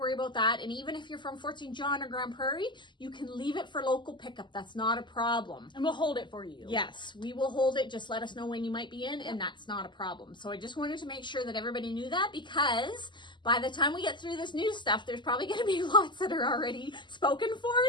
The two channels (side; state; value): right; late; 0.22 ms